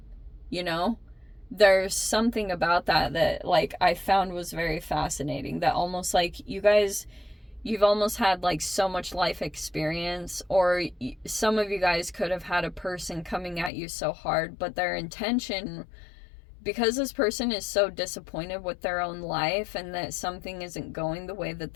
You know, there's something about that like I found was very fascinating, that almost like you've almost had like so much life experience, or some of you guys could have had a person coming at you so hard, but their intention, because this person is so disappointed with their own life and that something isn't going the way that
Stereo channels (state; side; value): drops out; right; at 13.7 s